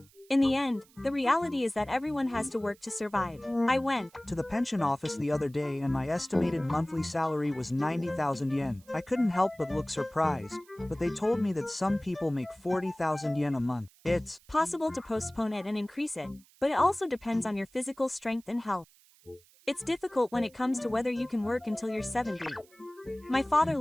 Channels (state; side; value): noise; right; hiss, 28 dB below the sound